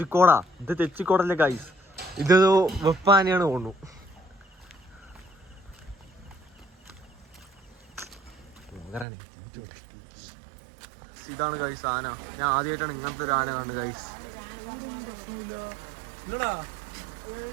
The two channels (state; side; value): drops out; left; at 9.1 s